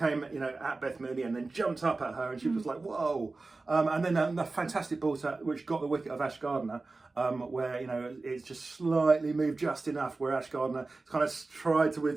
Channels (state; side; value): quieter; left; 3.6 dB